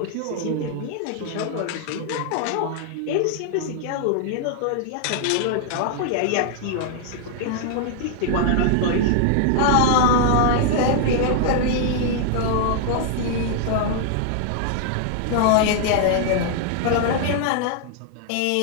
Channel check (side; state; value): both; different; correlation 0.00